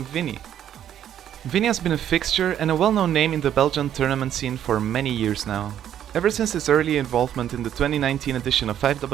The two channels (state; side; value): quieter; left; 10.4 dB